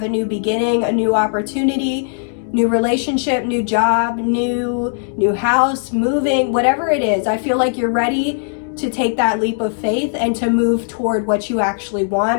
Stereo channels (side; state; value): right; silent; digital silence